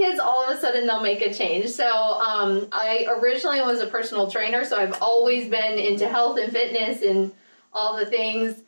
all of a sudden they'll make a change. So I originally was a personal trainer, so I've always been into health and fitness and all the things,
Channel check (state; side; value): inverted; both; correlation -1.00